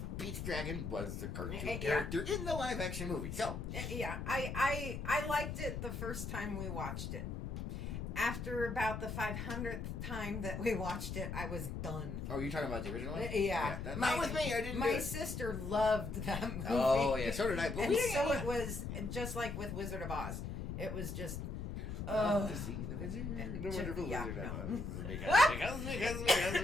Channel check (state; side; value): noise; left; rumble, 5 dB below the sound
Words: Pete's Dragon was the cartoon Yeah. character in the live action movie. So, Yeah, I liked it the first time we watched it. After about the 500th time that we watched it, I was done. oh, you're talking about the original one? Yeah. Not with me, I didn't do My it. sister loved that movie. Oh, yeah, so did I. But And we didn't so get it was just like with Wizard of Oz. It was just... Love to see the wizard, the wonderful yeah, wizard. no.